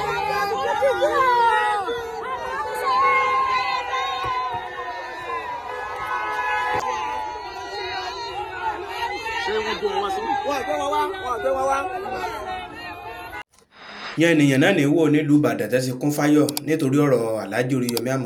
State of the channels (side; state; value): both; identical; correlation 1.00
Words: Yan ènìyàn náà ní wò nílùú Ìbàdàn tẹ́sí kún fáyọ̀ nítorí ọ̀rọ̀ Alhaji Oríyọmí